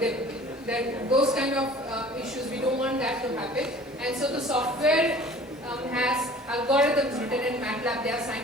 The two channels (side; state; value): both; normal; correlation 0.47